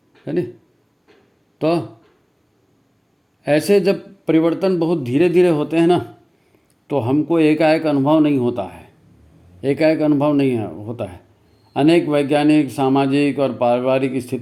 है नहीं। तो ऐसे जब परिवर्तन बहुत धीरे धीरे होते हैं ना, तो हमको एकाएक अनुभव नहीं होता है, एकाएक अनुभव नहीं होता है। अनेक वैज्ञानिक, सामाजिक और पारिवारिक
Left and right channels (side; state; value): both; identical; correlation 1.00